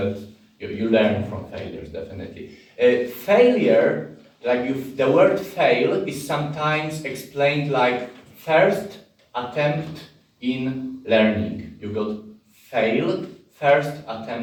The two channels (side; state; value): both; identical; correlation 1.00